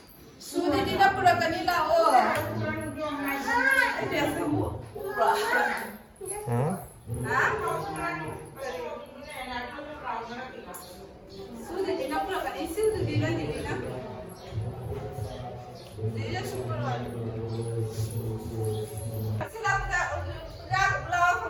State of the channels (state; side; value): identical; both; correlation 1.00